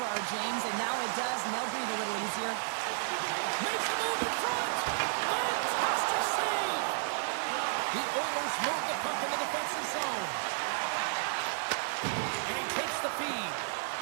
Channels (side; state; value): left; silent; digital silence